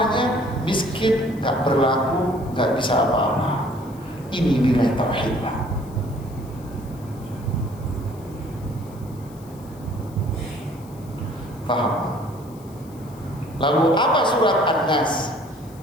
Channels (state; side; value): noise; left; hiss, 25 dB below the sound